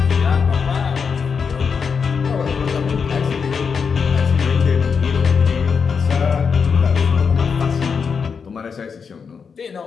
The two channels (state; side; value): quieter; right; 6.0 dB